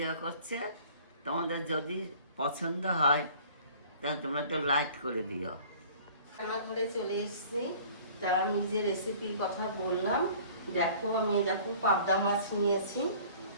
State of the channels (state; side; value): inverted; both; correlation -0.49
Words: করছে, তোমাদের যদি পছন্দ হয় তাহলে তোমরা একটু লাইক করে দিও। রান্নাঘরে চলে এসেছি। তা আমি যে রেসিপির কথা বললাম, দেখো আমি দেখো পাবদা মাছ নিয়েছি।